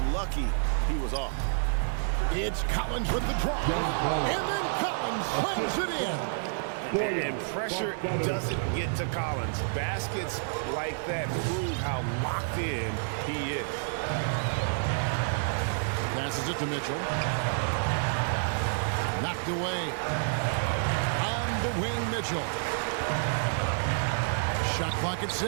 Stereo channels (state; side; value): silent; left; digital silence